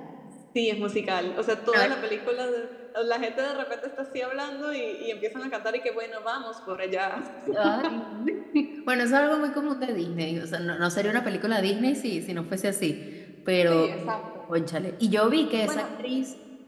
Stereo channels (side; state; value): both; identical; correlation 1.00